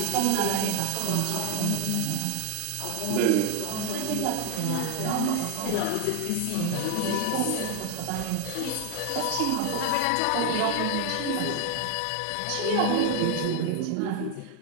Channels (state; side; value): different; both; correlation 0.01